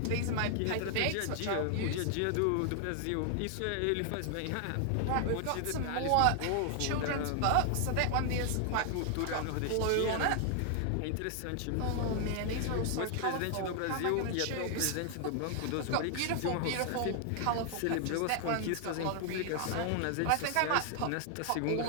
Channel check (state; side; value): different; both; correlation 0.00